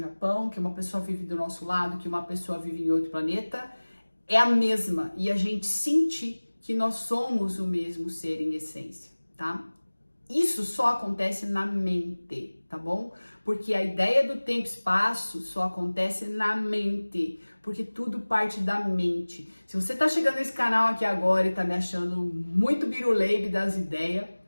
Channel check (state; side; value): inverted; both; correlation -1.00